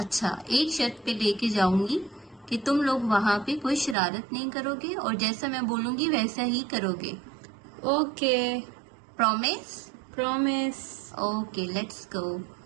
एक शर्त पे लेके जाऊंगी कि तुम लोग वहाँ पे कोई शरारत नहीं करोगे और जैसा मैं बोलूंगी वैसा ही करोगे। Okay, promise? Promise. Okay, let's go.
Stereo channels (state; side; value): drops out; left; at 4.0 s